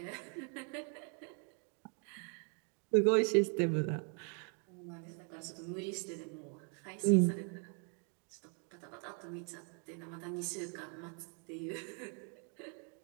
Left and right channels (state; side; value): quieter; left; 39.3 dB